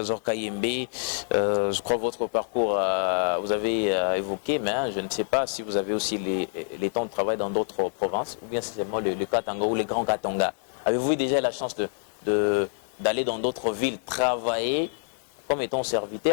Kayembe. Je crois que votre parcours, vous avez évoqué, mais je ne sais pas si vous avez aussi les temps de travail dans d'autres provinces, ou bien c'est seulement le Katanga ou les grands Katanga. Avez-vous eu déjà la chance d'aller dans d'autres villes travailler comme étant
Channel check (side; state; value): right; silent; digital silence